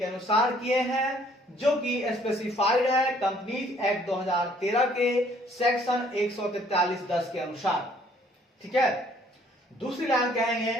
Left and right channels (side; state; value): both; normal; correlation 0.61